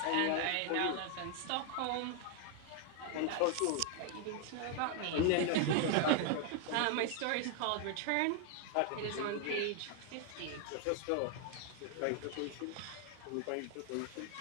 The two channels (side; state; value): both; different; correlation 0.01